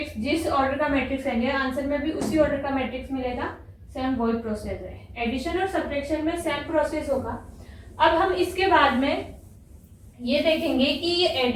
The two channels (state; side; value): identical; both; correlation 1.00